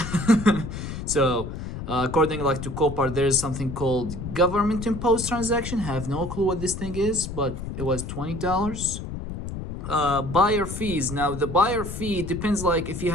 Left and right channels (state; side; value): noise; left; rumble, 7 dB below the sound